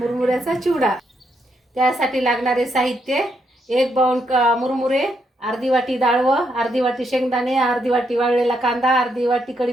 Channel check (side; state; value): both; normal; correlation 0.78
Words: चिवडा। त्यासाठी लागणारे साहित्य: 1 बाउल मुरमुरे, अर्धी वाटी डाळ, अर्धी वाटी शेंगदाणे, अर्धी वाटी वाळलेला कांदा, अर्धी वाटी